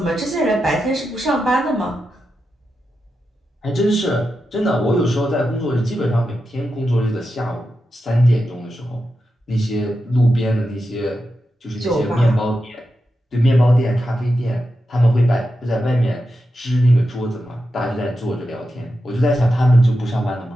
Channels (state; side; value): normal; both; correlation 0.89